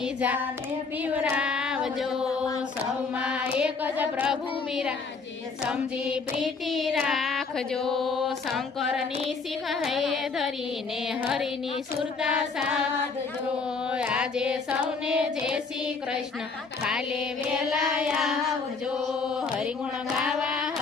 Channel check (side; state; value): right; quieter; 4.6 dB